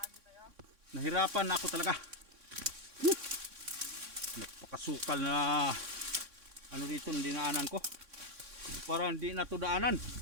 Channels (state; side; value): late; left; 3.6 ms